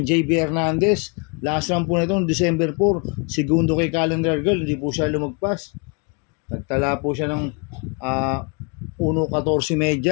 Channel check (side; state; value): right; quieter; 34.5 dB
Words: JB Hernandez. Last lang po na ito, December 4. Segundo kay Calendar Girl. Hindi po siya lumagpas. Nagtala po siya ng 1.14